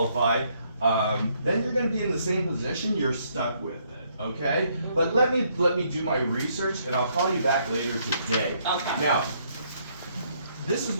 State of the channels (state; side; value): inverted; both; correlation -0.70